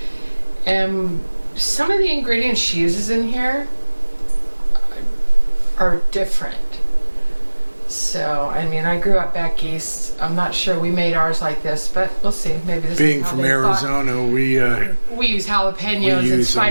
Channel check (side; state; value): both; inverted; correlation -1.00